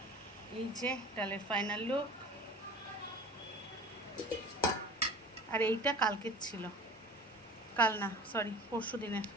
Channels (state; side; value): normal; both; correlation 0.40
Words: এই যে ডালের ফাইনাল লুক। আর এইটা কালকের ছিল, কাল না সরি পরশু দিনের।